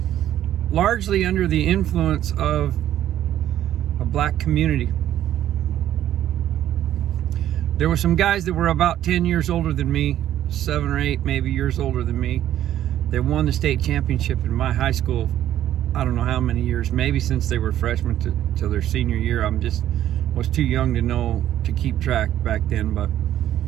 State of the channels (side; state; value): left; quieter; 12.0 dB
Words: largely under the influence of a black community. There were some guys that were about 10 years older than me, 7 or 8 maybe years older than me. They won the state championship in my high school. I don't know how many years, maybe since they were freshmen to their senior year. Was too young to know to keep track back then, but